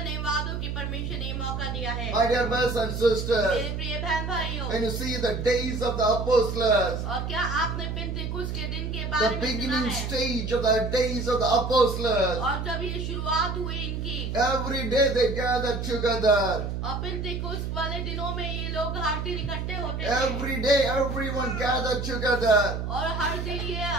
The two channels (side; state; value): right; noise; hum, 3 dB below the sound